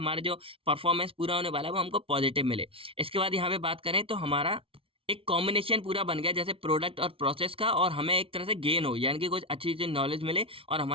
जो परफॉर्मेंस पूरा होने वाला है वो हमको पॉजिटिव मिले। इसके बाद यहाँ पे बात करें तो हमारा एक कॉम्बिनेशन पूरा बन गया, जैसे प्रोडक्ट और प्रोसेस का, और हमें एक तरह से गेन हो, यानी कि कुछ अच्छी चीज नॉलेज मिले और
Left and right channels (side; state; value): left; late; 0.26 ms